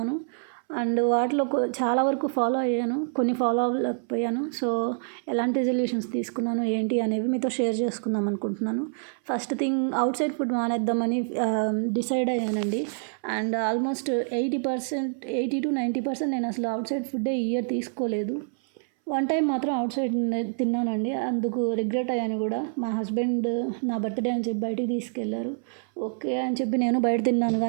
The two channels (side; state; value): left; silent; 60 dB below the other